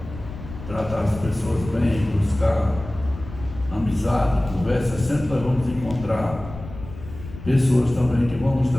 tratar as pessoas bem, buscar amizade, conversa, sempre nós vamos encontrar pessoas também que vão nos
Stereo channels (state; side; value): noise; left; rumble, 13 dB below the sound